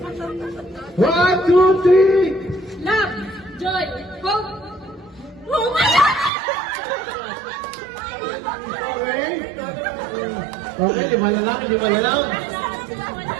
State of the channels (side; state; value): left; drops out; at 6.3 s